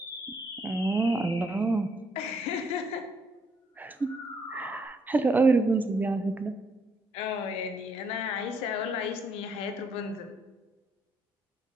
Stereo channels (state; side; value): normal; both; correlation 0.72